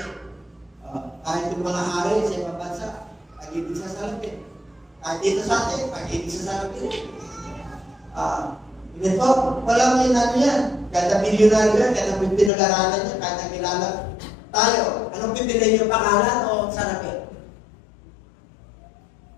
Kahit yung mga hari sa ibang bansa, pag-ibig sa sarapin. Kahit dito sa atin, pag-ibig sa sarapin. Ito, walang ano yan. Kada milyonaryo yan, kada pinag-aralan yan, kada kilala tayo. Anong pipiliin yung pangalan o sarapin?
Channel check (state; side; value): drops out; right; at 12.5 s